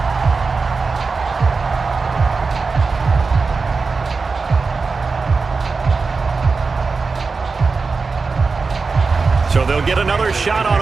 So they'll get another shot on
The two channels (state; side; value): quieter; left; 4.4 dB